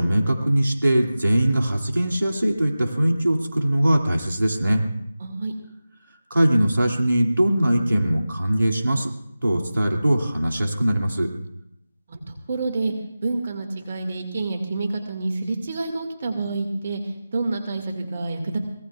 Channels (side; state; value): both; inverted; correlation -0.95